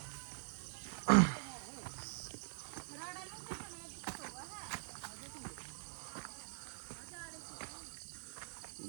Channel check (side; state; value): left; silent; digital silence